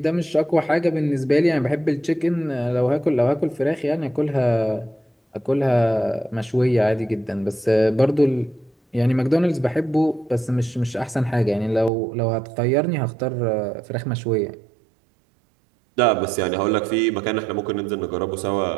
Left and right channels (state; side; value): drops out; left; at 11.9 s